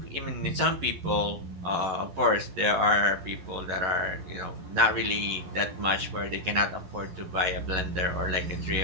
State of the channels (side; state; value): left; late; 11 ms